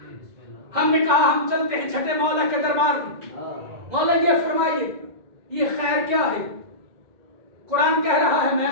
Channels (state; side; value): late; left; 2.0 ms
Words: ہم نے کہا ہم چلتے ہیں چھٹے مولا کے دربار میں. مولا یہ فرمائیے یہ خیر کیا ہے؟ قرآن کہہ رہا ہے میں